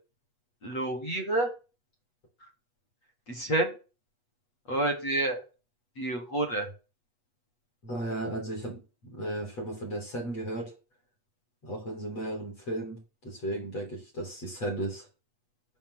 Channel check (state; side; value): late; right; 8.2 ms